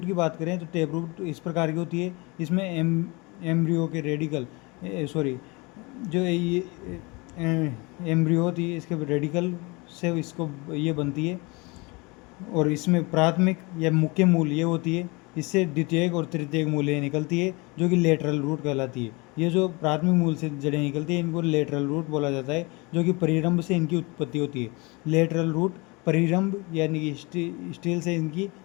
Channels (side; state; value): right; quieter; 26.7 dB